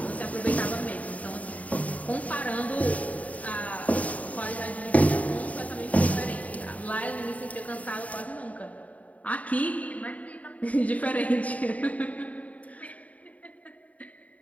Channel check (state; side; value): late; right; 0.070 ms